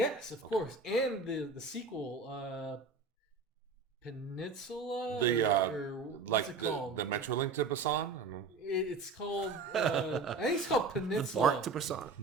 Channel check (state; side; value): quieter; left; 4.2 dB